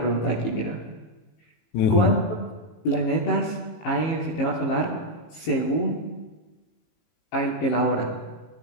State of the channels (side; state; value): right; late; 18 ms